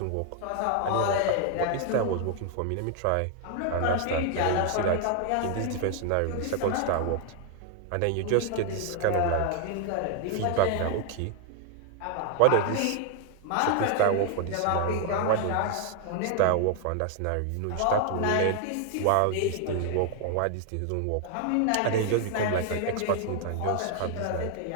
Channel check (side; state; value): both; different; correlation 0.00